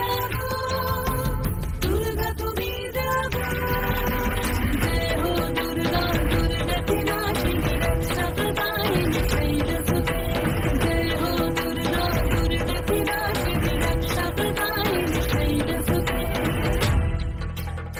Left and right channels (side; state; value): both; identical; correlation 1.00